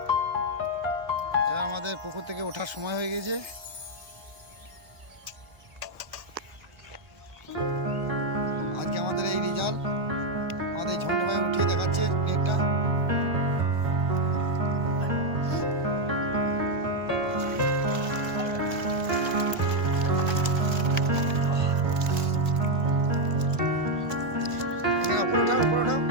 এবার আমাদের পুকুর থেকে ওঠার সময় হয়ে গেছে। আজকে আমাদের এই রেজাল্ট আমাদের ঝন্টু ভাই উঠিয়ে দেখাচ্ছে নেটটা। উপরে ওঠাও, উপরে ওঠাও।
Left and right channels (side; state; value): left; late; 1.4 ms